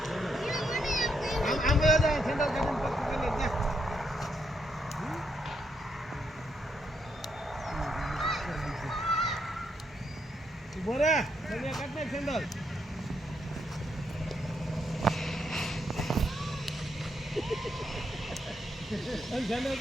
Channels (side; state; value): both; normal; correlation 0.78